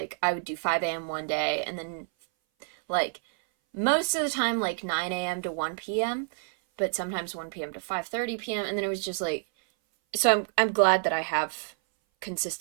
I would do 5 a.m. one day and then like most of the time like 9 a.m. to 1 p.m., but sometimes 1 p.m. to 5:30 p.m. And then it was just like, so I'm glad that I have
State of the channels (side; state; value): left; silent; 58 dB below the other